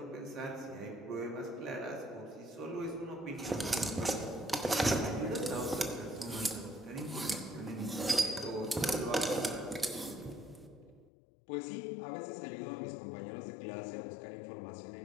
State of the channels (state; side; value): drops out; right; at 11.1 s